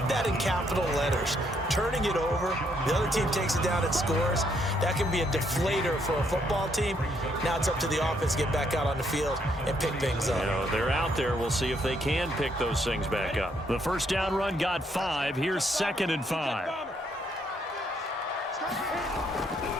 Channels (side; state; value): both; normal; correlation 0.72